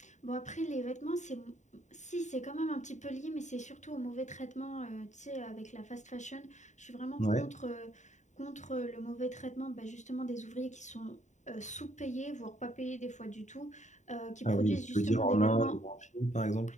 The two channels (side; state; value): right; late; 0.34 ms